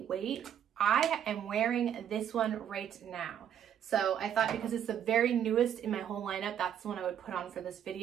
I am wearing this one right now. So I thought, because it's the very newest in my whole lineup, that's the one I would put on for this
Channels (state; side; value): quieter; left; 9.4 dB